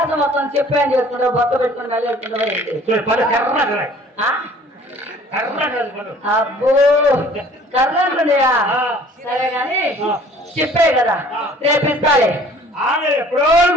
మొత్తం చెప్పే అని చేసుకుంటావు, బొత్త పెట్టుకుని మళ్ళీ వెళ్తుంటావా? అబ్బో కర్రంటున్నాయా? సరే గాని చెప్పే కదా రేపు ఇస్తాలే.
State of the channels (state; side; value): normal; both; correlation 0.52